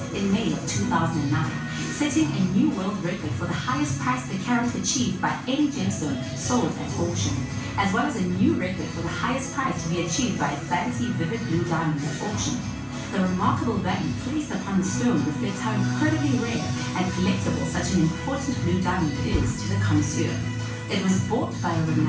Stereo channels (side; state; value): both; identical; correlation 1.00